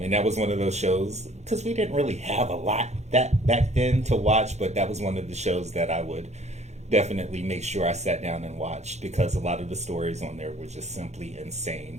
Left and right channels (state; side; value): late; left; 0.33 ms